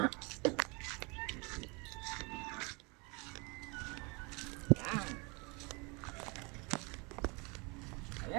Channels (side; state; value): left; quieter; 29.7 dB